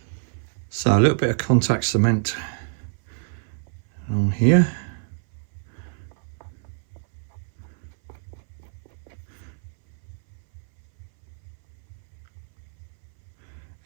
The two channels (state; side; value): silent; left; 58 dB below the other